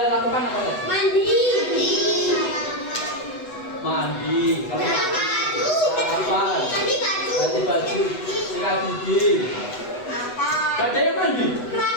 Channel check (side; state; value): right; late; 8.1 ms